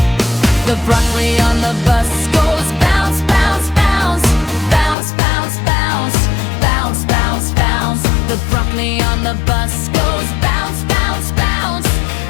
The broccoli on the bus goes bounce, bounce, bounce. Bounce, bounce, bounce. Bounce, bounce, bounce. The broccoli on the bus goes bounce, bounce, bounce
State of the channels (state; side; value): drops out; right; at 5.0 s